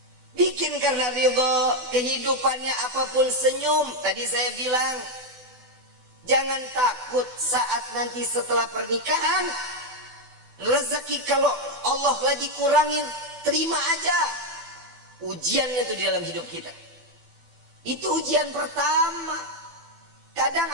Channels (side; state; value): left; late; 12 ms